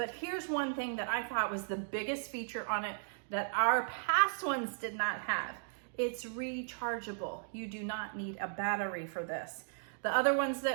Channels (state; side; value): silent; left; digital silence